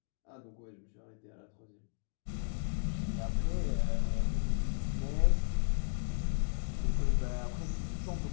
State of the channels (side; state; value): right; silent; digital silence